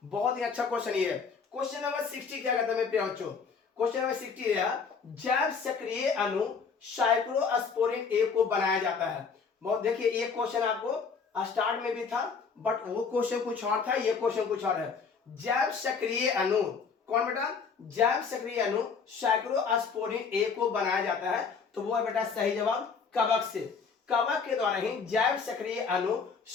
बहुत ही अच्छा क्वेश्चन ये है। क्वेश्चन नंबर 60 क्या कहता है मेरे प्यारे बच्चों? क्वेश्चन नंबर 60 है, जैव सक्रिय अणु साइक्लोस्पोरिन ए को बनाया जाता है। बहुत देखिए, ये क्वेश्चन आपको स्टार्ट में भी था, बट वो क्वेश्चन कुछ और था, ये क्वेश्चन कुछ और है। जैव सक्रिय अणु कौन बेटा? जैव सक्रिय अणु साइक्लोस्पोरिन ए को बनाया जाता है, तो वो है बेटा सही जवाब कवक से। कवक के द्वारा ही जैव सक्रिय अणु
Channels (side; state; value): right; quieter; 5.5 dB